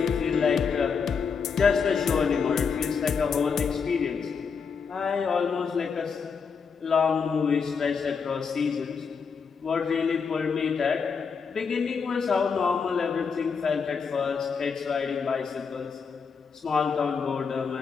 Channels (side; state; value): right; quieter; 5.8 dB